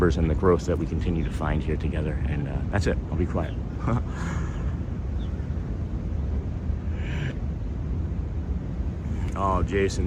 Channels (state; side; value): identical; both; correlation 1.00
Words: and the growth that we continue to find here together. And that's it. I'll be quiet. Oh,